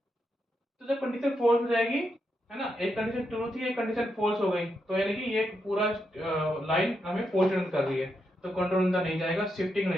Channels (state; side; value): normal; both; correlation 0.83